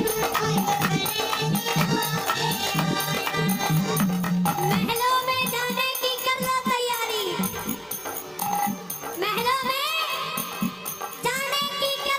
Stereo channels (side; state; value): both; identical; correlation 1.00